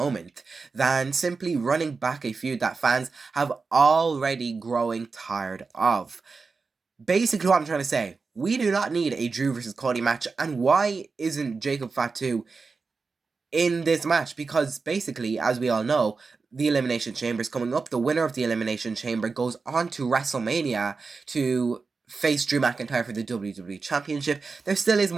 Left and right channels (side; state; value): left; quieter; 4.5 dB